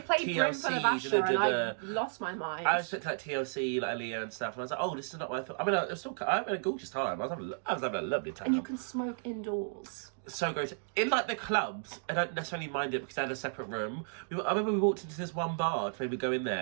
TLC, Brim for the Basher and I the- lost my mind. I was expecting like TLC, like Aaliyah and stuff, and I was like, oh, this is not what I thought. I mean, I had a gorgeous time. I was having a lovely time. And you can smoke indoors. So great. In like the clubs, I don't necessarily mind it because they had a separate room. I remember we walked into this one bar to maybe go in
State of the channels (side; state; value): left; silent; digital silence